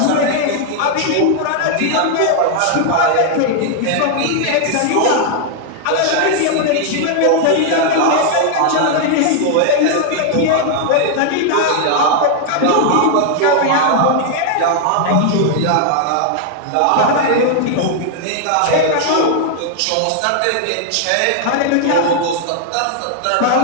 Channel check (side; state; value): both; different; correlation 0.00